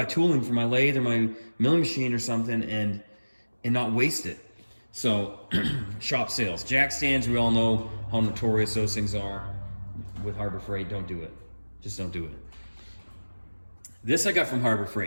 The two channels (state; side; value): inverted; both; correlation -1.00